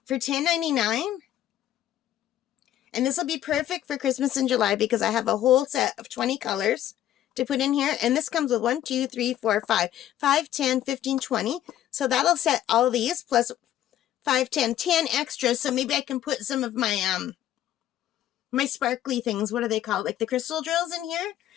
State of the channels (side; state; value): right; quieter; 12.1 dB